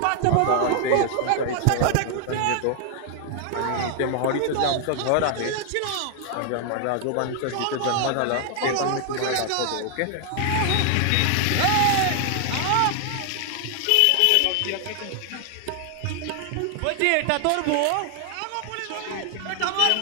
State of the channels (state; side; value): different; both; correlation 0.00